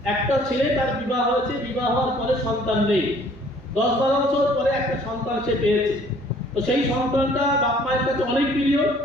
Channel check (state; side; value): normal; both; correlation 0.57